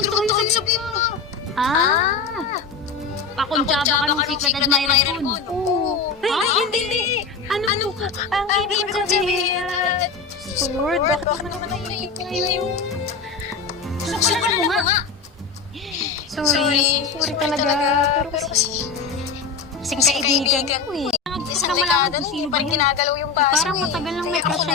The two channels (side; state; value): right; quieter; 5.0 dB